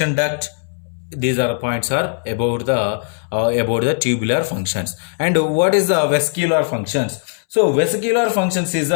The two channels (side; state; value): right; silent; 65 dB below the other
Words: duct. These are points are about the tubular functions. And what is the vesicular functions? So vesicular functions is